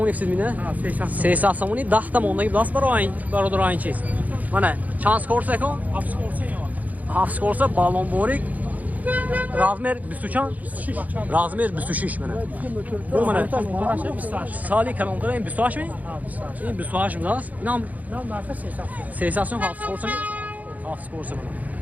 فسید میده؟ 300 سومونی 10 تا موندگی داست برای برادر این چیز. منه چند سکورس کن؟ 7 سکورس. 7 سکورس بالون بوریک. رازمر 20 چند؟ رازمر 26 منه. Bu منه. سالی کلانتر این 28 می؟ این 28 می داست. اینم 300 سوم 7 سکورس می؟ 7 سکورس منه.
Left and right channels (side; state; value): left; late; 0.077 ms